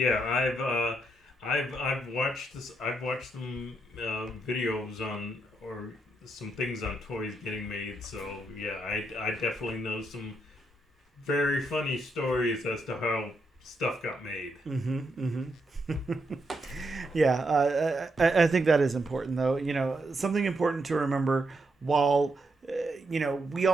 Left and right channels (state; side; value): normal; both; correlation 0.80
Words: I've watched this. I've watched some videos on or some things on toys getting made. So yeah, I definitely know some very funny stories as to how stuff got made. Yeah, I think that is important, though. Something important to remember while, we